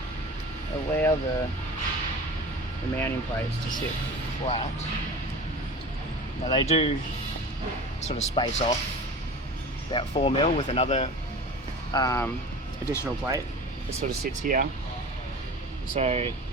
allow the mounting plates to sit flat. Now they do sort of space off about 4mm with another additional plate that sort of sits here. So,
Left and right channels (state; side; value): normal; both; correlation 0.36